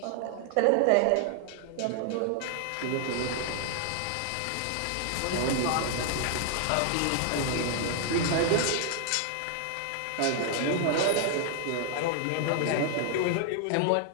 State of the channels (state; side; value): different; both; correlation 0.00